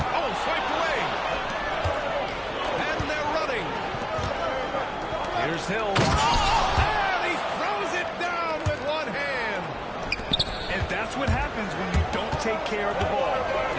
Oh, swiped away. And they're running. Here's Hill. And he throws it down with one hand. And that's what happens when you don't take care of the ball.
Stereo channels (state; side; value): identical; both; correlation 1.00